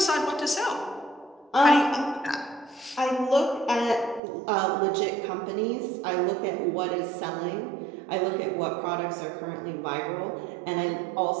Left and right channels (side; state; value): left; drops out; at 4.2 s